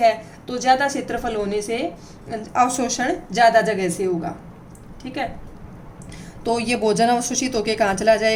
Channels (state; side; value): identical; both; correlation 1.00